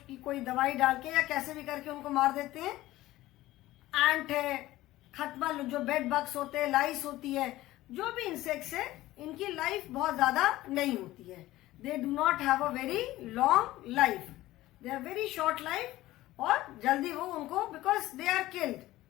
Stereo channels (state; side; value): quieter; right; 16.5 dB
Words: की कोई दवाई डाल के या कैसे भी करके उनको मार देते हैं. एंट है, खटमल जो बेड बग्स होते हैं, लाइस होती है, जो भी इंसेक्ट्स है इनकी लाइफ बहुत ज्यादा नहीं होती है. They do not have a very long life. They are very short life. और जल्दी वो उनको, बिकॉज दे आर किल्ड.